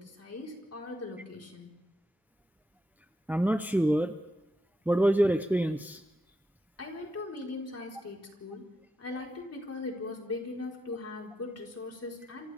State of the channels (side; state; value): both; normal; correlation 0.85